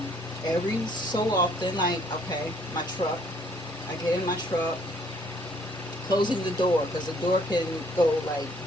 Every so often, like, okay, my truck, I get in my truck, closing the door, because the door can go, like,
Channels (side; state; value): both; normal; correlation 0.63